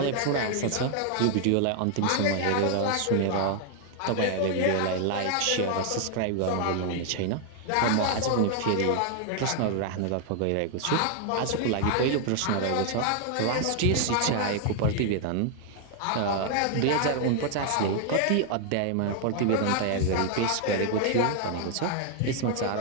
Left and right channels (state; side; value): different; both; correlation 0.00